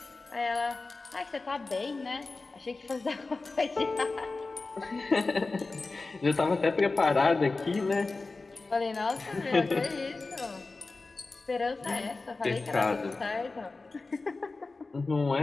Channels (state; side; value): quieter; right; 3.6 dB